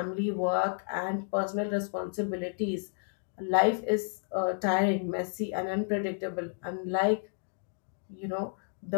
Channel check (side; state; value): right; silent; digital silence